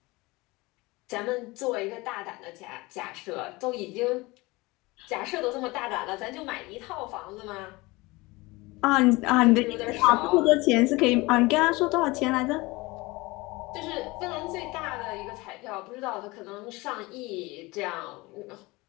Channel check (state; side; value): quieter; right; 22.7 dB